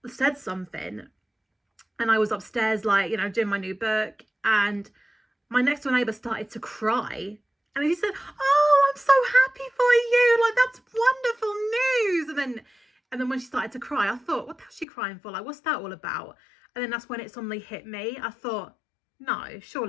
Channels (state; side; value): drops out; right; at 14.9 s